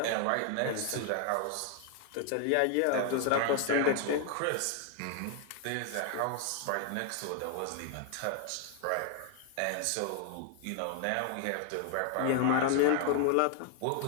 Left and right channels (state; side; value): different; both; correlation 0.00